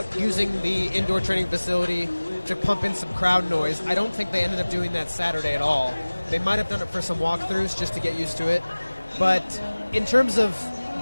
using the indoor training facility to pump in some crowd noise. I don't think they ended up doing that Saturday at all. They might have done it for some walkthroughs just to get used to it. But in terms of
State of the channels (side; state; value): both; inverted; correlation -1.00